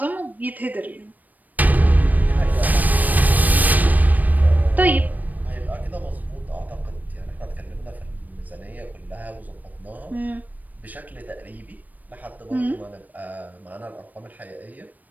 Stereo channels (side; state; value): left; late; 0.082 ms